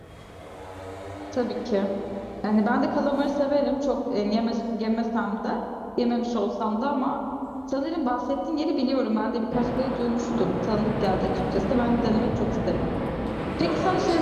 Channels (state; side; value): identical; both; correlation 1.00